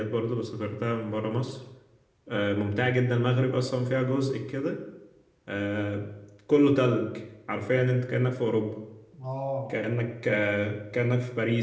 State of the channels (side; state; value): both; identical; correlation 1.00